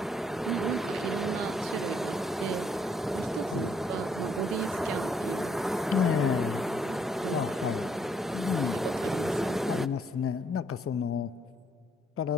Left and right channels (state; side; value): normal; both; correlation 0.70